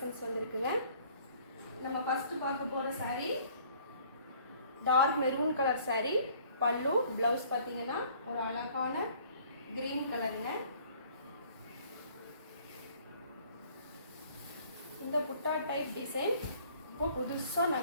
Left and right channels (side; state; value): both; inverted; correlation -0.56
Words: வந்துருக்குங்க. நம்ம ஃபஸ்ட்டு பார்க்க போகிற sari dark maroon colour sari. பல்லு ப்ளவுஸ் பார்த்தீங்கன்னா ஒரு அழகான க்ரீன் கலருங்க. இந்த புட்டா டைப் டிசைன் இப்போ